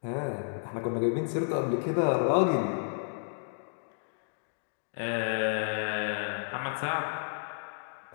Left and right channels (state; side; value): silent; right; digital silence